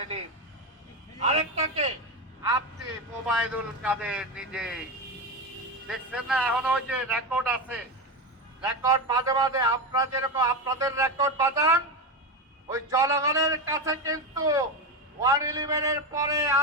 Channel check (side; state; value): both; normal; correlation 0.15